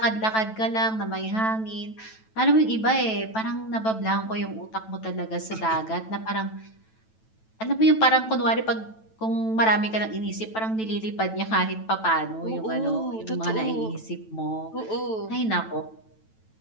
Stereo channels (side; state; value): right; late; 9.1 ms